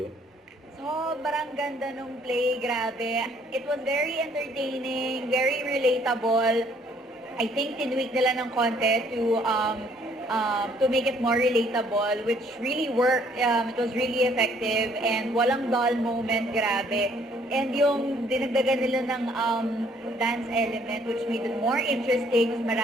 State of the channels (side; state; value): both; normal; correlation 0.63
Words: Sobrang ganda nung play, grabe. It was very entertaining, very relatable. I think tinweak nila ng konti to make it more relatable, which really worked. It was really effective and walang dull moment, grabe. And yung dinagdagan nila ng dance element, which made it more interesting, mas